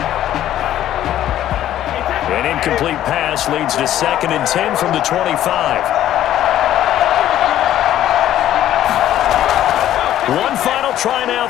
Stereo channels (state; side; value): quieter; right; 12.3 dB